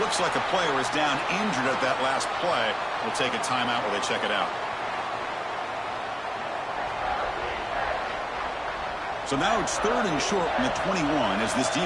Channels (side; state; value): both; identical; correlation 1.00